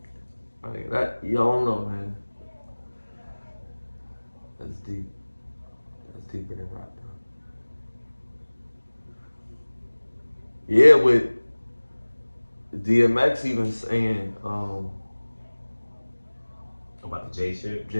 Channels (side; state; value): both; inverted; correlation -1.00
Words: I mean, that, you don't know, man. That's deep. That's deeper than rock, bro. Yeah, with DMX even saying, About the J shit?